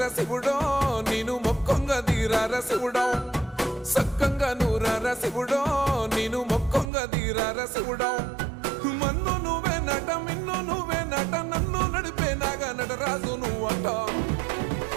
శివుడో నేను మొక్కొంగ దీరార శివుడో సక్కంగా నూరార శివుడో నేను మొక్కొంగ దీరార శివుడో మన్ను నువ్వే నట మిన్ను నువ్వే నట నన్ను నడిపే నాగా నటరాజు నువ్వట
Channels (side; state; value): left; drops out; at 6.9 s